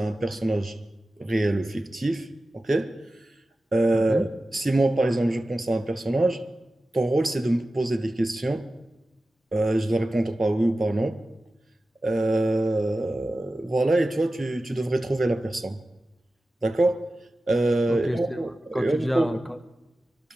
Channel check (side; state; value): both; normal; correlation 0.95